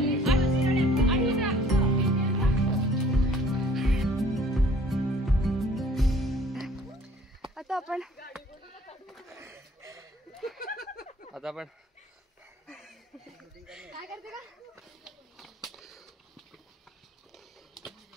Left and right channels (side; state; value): both; normal; correlation 0.55